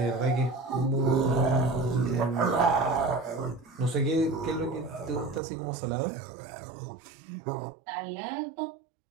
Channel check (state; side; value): drops out; left; at 5.4 s